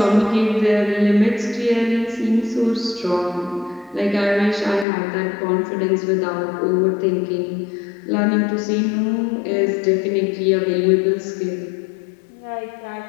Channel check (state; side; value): drops out; right; at 4.9 s